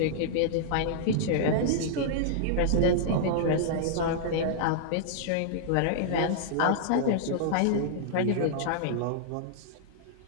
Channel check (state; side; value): different; both; correlation -0.02